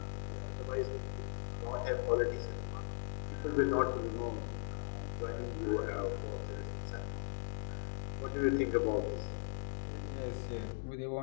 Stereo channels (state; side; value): silent; right; digital silence